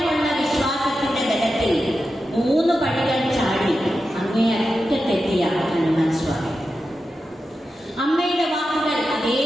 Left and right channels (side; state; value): both; normal; correlation 0.90